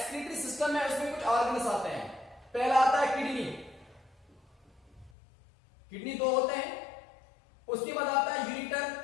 सिस्टम है उसमें कुछ ऑर्गन्स आते हैं। पहला आता है किडनी दो होते हैं, उसके बाद आता है यूरिटर,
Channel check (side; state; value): right; drops out; at 5.1 s